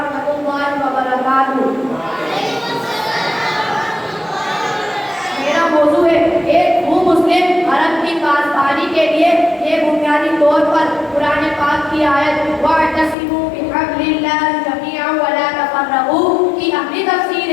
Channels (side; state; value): right; drops out; at 13.2 s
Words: اللہ وبرکاتہ۔ میرا موضوع ہے ایک مسلم حرم کی پاسبانی کے لیے۔ یہ بنیادی طور پر قرآن پاک کی آیت وَاعْتَصِمُوا بِحَبْلِ اللَّهِ جَمِيعًا وَلَا تَفَرَّقُوا کی عملی